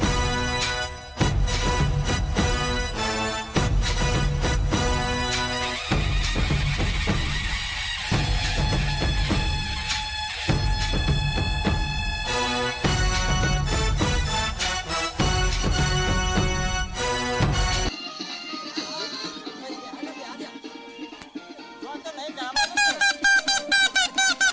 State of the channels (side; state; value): both; identical; correlation 1.00